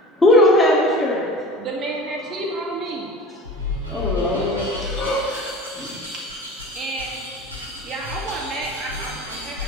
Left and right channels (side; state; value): both; normal; correlation 0.37